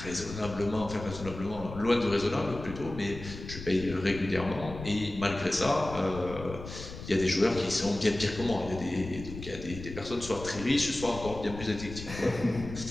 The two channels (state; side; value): noise; left; rumble, 11 dB below the sound